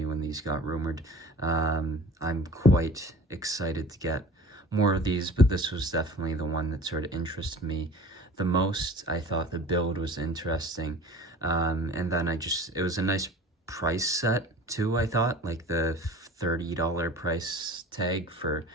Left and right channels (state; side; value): normal; both; correlation 0.41